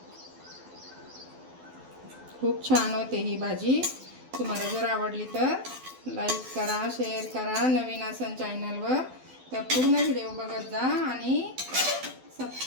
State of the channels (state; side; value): late; left; 12 ms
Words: खूप छान होते ही भाजी. तुम्हाला जर आवडली तर लाईक करा, शेअर करा. नवीन असेल चॅनलवर तर पूर्ण व्हिडिओ बघत जा आणि